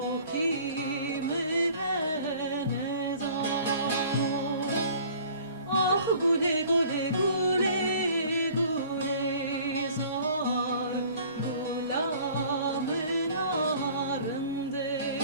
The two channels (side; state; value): both; inverted; correlation -0.50